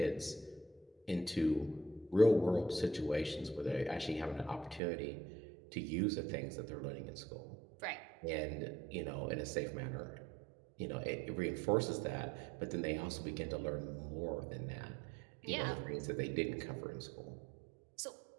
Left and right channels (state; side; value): drops out; left; at 4.8 s